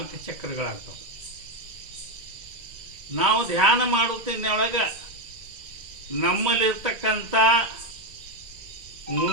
ಚಕ್ರಗಳಾಗ್ತವೆ. ನಾವು ಧ್ಯಾನ ಮಾಡುತ್ತಿನೊಳಗೆ ನಮ್ಮಲ್ಲಿರ್ತಕ್ಕಂಥ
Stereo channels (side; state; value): left; late; 2.1 ms